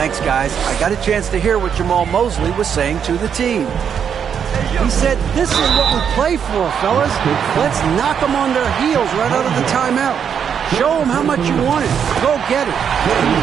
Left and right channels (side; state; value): left; quieter; 7.7 dB